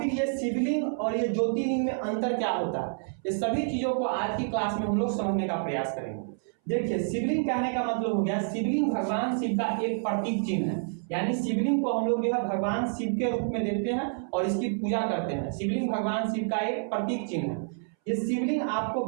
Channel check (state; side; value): silent; left; 59 dB below the other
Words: ये शिवलिंग और ये ज्योतिर्लिंग में अंतर क्या होता है, ये सभी चीजों को आज की क्लास में हम लोग समझने का प्रयास करेंगे। देखिए, शिवलिंग कहने का मतलब हो गया, शिवलिंग भगवान शिव का एक प्रतीक चिन्ह है। यानी शिवलिंग को हम लोग जो है भगवान शिव के रूप में देखते हैं और इसकी पूजा करते हैं। शिवलिंग भगवान शिव का एक प्रतीक चिन्ह है। ये शिवलिंग आपको